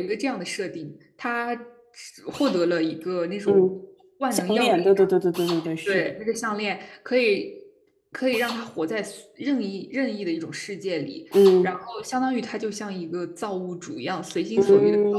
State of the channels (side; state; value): both; identical; correlation 1.00